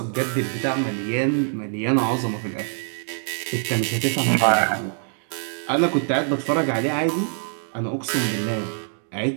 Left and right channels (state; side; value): silent; left; digital silence